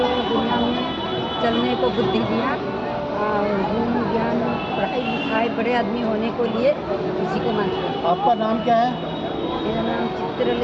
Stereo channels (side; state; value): both; identical; correlation 1.00